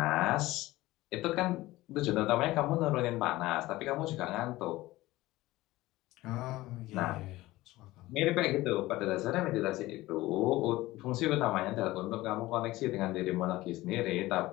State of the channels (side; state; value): right; quieter; 18.0 dB